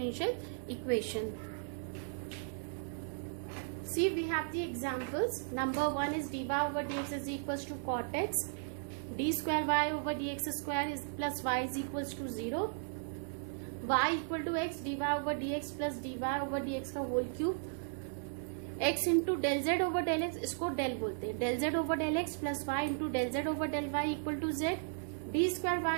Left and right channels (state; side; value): silent; left; digital silence